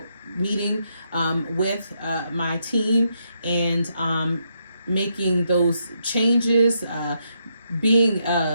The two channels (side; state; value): both; inverted; correlation -0.79